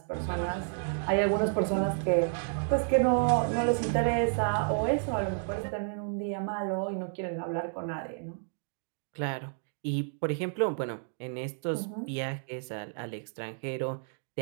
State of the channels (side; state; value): left; silent; 57 dB below the other